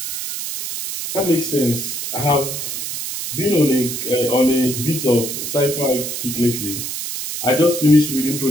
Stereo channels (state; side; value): noise; right; hiss, 5 dB below the sound